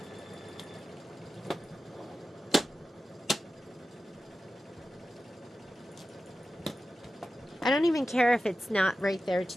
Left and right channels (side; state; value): both; normal; correlation 0.93